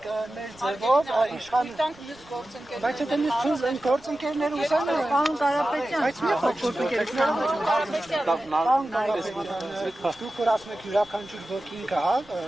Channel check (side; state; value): right; noise; rumble, 27 dB below the sound